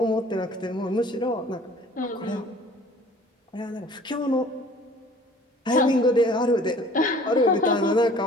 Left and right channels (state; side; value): normal; both; correlation 0.50